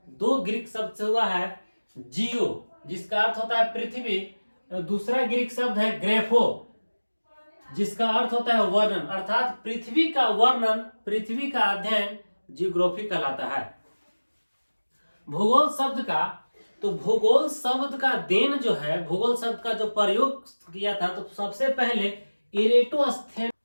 2 ग्रीक शब्द से हुआ है। जियो, जिसका अर्थ होता है पृथ्वी, दूसरा ग्रीक शब्द है ग्रेफो, जिसका अर्थ होता है वर्णन। अर्थात पृथ्वी का वर्णन, पृथ्वी का अध्ययन जियोग्राफी कहलाता है। भूगोल शब्द का, तो भूगोल शब्द का देन जो है, भूगोल शब्द का जो प्रयोग किया था, तो सबसे पहले इरेटोस्थेन,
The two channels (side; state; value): both; inverted; correlation -1.00